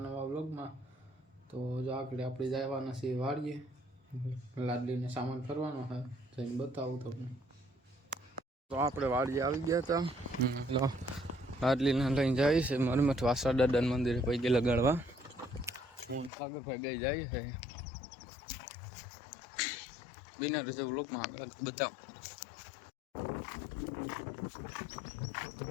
નવા વ્લોગમાં. તો જો આગળ આપણે જવાના છીએ વાડીએ, લાડલીને સામાન કરવાનો છે, જઈને બતાવું તમને. તો આપણે વાડીએ આવી ગયા હતા, લાડલીને લઈને જાય છે મરમઠ વાસા દાદા મંદિરે પૈગે લગાડવા. હું સાગરભાઈ બે જાય છે. બિના રજા વ્લોગમાં આગળ બતાવું.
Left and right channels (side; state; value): right; drops out; at 16.3 s